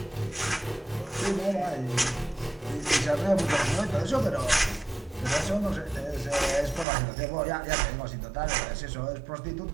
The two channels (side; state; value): left; drops out; at 6.9 s